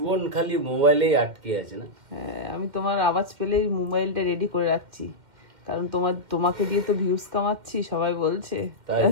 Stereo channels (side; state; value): left; late; 2.1 ms